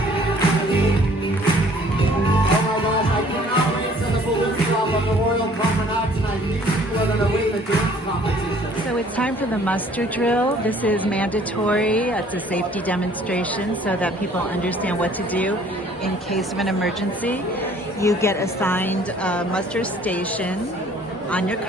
So it's time for the muster drill. This is mandatory. It's a safety demonstration so that people understand what to do in case of an emergency. You get assigned a muster station on your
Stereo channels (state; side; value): normal; both; correlation 0.56